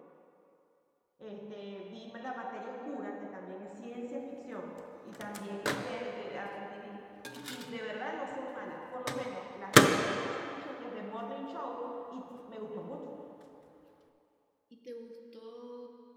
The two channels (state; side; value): identical; both; correlation 1.00